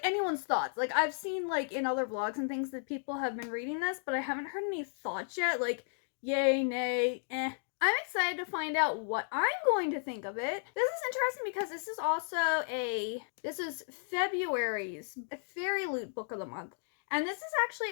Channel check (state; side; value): silent; right; digital silence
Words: anyone's thoughts. I've seen, in other vlogs and things that people have been reading this, but I haven't heard any thoughts yet, yay, nay, eh. I'm excited to find out what I'm going to think of it. This is interesting because this is also this is February's Fairy Loot Book of the Month. And this is actually